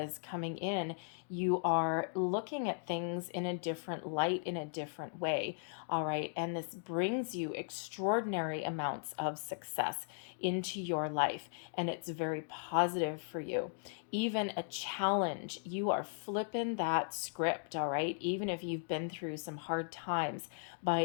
coming in. You are looking at things in a different light, in a different way. All right. And this brings you extraordinary amounts of success into your life. And it's very positive for you. Even a challenge, you are flipping that script. All right. Even if you've been through some hard times, by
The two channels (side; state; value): right; silent; digital silence